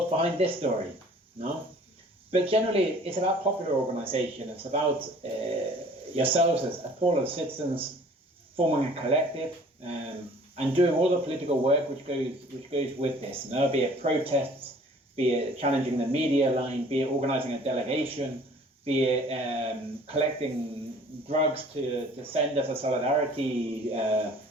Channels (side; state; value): both; normal; correlation 0.51